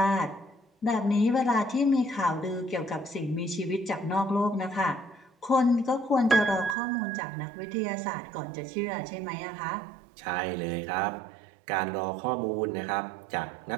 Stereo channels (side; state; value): left; drops out; at 6.8 s